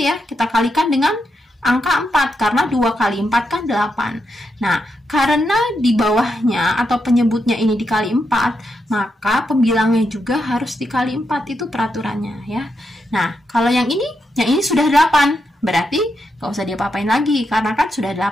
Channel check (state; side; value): normal; both; correlation 0.84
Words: Kita kalikan dengan angka 4. Karena 2 kali 4 kan 8. Nah, karena di bawahnya atau penyebutnya ini dikali 4, maka pembilangnya juga harus dikali 4. Itu peraturannya ya. Nah, kalau yang ini sudah 8. Berarti nggak usah diapa-apain lagi, karena kan sudah